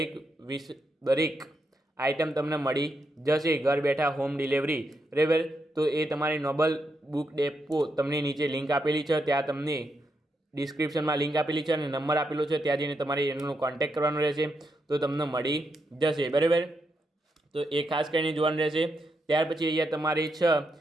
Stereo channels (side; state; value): both; normal; correlation 0.82